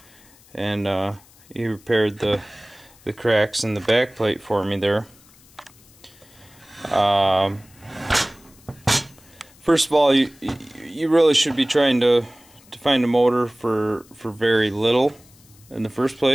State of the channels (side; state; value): left; noise; hiss, 27 dB below the sound